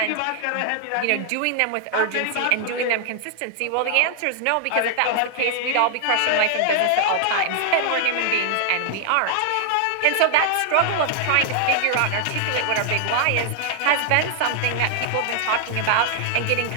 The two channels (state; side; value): different; both; correlation 0.00